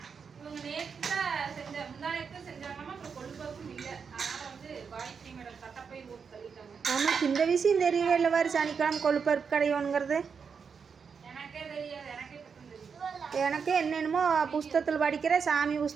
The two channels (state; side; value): quieter; left; 6.1 dB